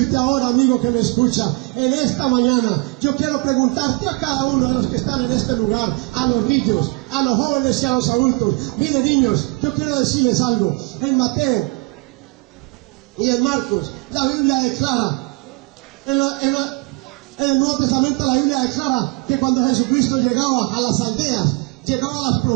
ahora, amigo que me escucha, en esta mañana, yo quiero preguntarte a cada uno de los que están en este lugar, a los niños, a los jóvenes y a los adultos. Miren, niños, yo quiero decirles algo. En Mateo y en Marcos, la Biblia declara, en el Nuevo Testamento la Biblia declara que cuando Jesucristo llegaba a las aldeas, llegaba a las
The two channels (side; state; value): left; quieter; 25.7 dB